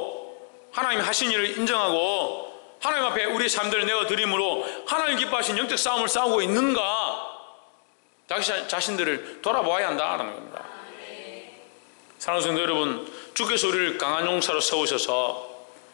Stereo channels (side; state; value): right; silent; digital silence